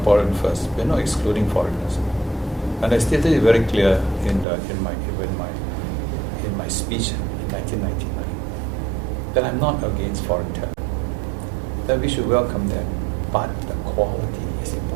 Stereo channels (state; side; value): drops out; left; at 4.5 s